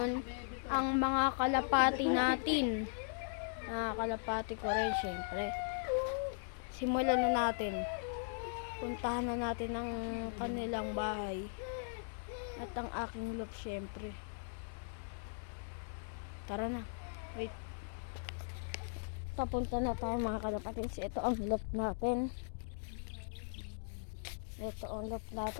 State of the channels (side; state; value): right; silent; digital silence